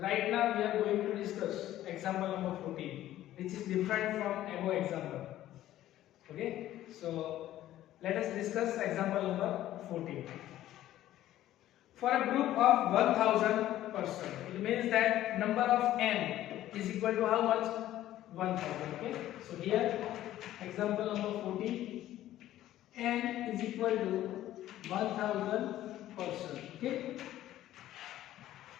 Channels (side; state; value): right; quieter; 13.6 dB